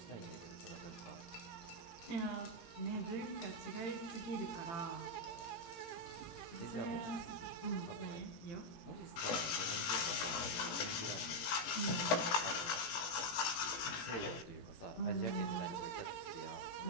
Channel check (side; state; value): right; late; 18 ms